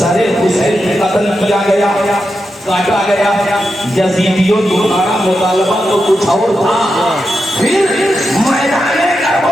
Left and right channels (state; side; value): normal; both; correlation 0.88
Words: حسین قتل کیا گیا، کاٹا گیا. یزیدیوں تمہارا مطالبہ تو کچھ اور تھا. پھر میدان